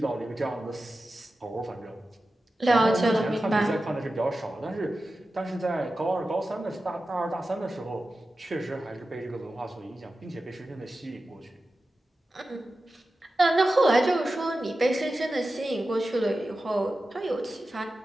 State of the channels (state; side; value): normal; both; correlation 0.93